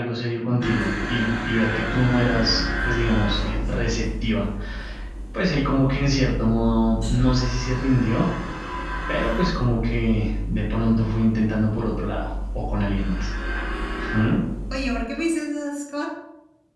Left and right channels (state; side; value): identical; both; correlation 1.00